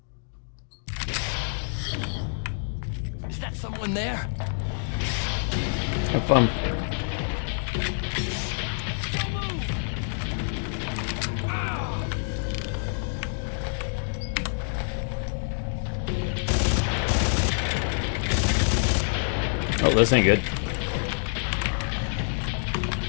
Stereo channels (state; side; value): silent; right; digital silence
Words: Is that someone there? Have fun. Oh, this ain't good.